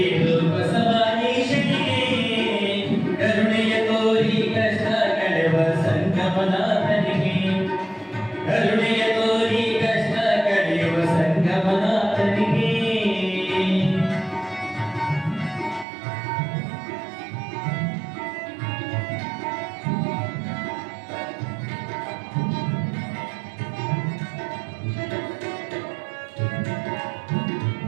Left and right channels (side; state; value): left; drops out; at 15.9 s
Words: ಬಸವಾನೀಶನಿಗೆ ಕರುಣೆಯ ತೋರಿ ಕಷ್ಟ ಕಳೆಯುವ ಸಂಗಮನಾಥನಿಗೆ ಕರುಣೆಯ ತೋರಿ ಕಷ್ಟ ಕಳೆಯುವ ಸಂಗಮನಾಥನಿಗೆ